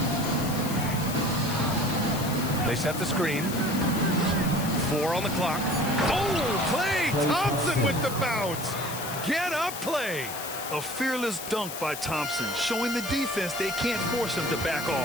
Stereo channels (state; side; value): noise; left; hiss, 9 dB below the sound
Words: They set the screen. 4 on the clock. Oh, Klay Thompson with the bounce. Get up, Klay. A fearless dunk by Thompson, showing the defense they can't force him to back